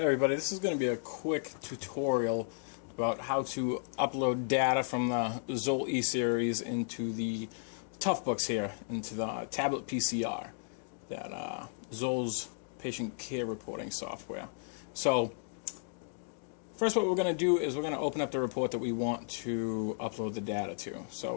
everybody, this is going to be a quick tutorial about how to upload data from the ZOLL E Series into the toughbooks here, into the tabletPCR, that ZOLL's patient care reporting software. So first what we're going to do is we're going to open up the report that we want to upload the data to.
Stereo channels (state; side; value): silent; right; digital silence